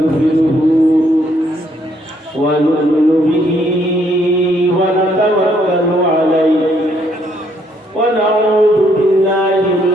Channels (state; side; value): normal; both; correlation 0.70